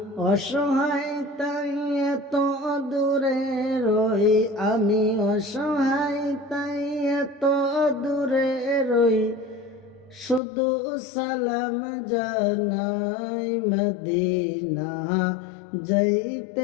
অসহায় তাই এত দূরে রই, আমি অসহায় তাই এত দূরে রই, শুধু সালাম জানাই। মদিনা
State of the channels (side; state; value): right; drops out; at 10.4 s